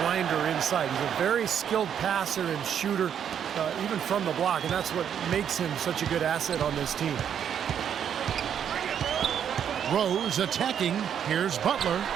inside. He's a very skilled passer and shooter, even from the block, and that's what makes him such a good asset on this team. Rose attacking. Here's Butler.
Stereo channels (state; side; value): quieter; left; 8.7 dB